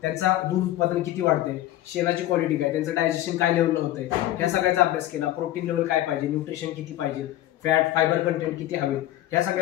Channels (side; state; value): right; quieter; 14.2 dB